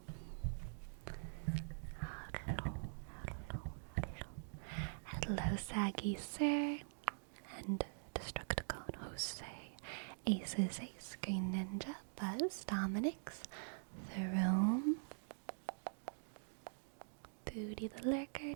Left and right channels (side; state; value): left; silent; digital silence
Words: Hello, Saggy Sir. And Destructicon Jose. Aces Ace, Green Ninja, Buzz, Dominix, Throne, Booty the Lurker,